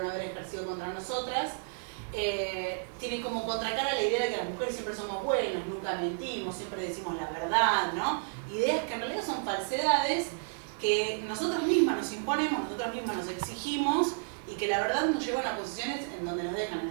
haber ejercido contra nosotras. Tiene como contracara la idea de que las mujeres siempre somos buenas, nunca mentimos, siempre decimos la verdad, ¿no? Ideas que en realidad son falsedades que nosotras mismas nos imponemos, nosotras mismas nos exigimos, y que la verdad nos llevan a posiciones en donde nos dejan en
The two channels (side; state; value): left; silent; digital silence